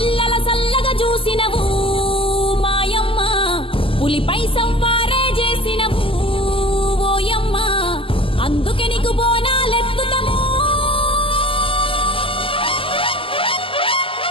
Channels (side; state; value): right; late; 0.26 ms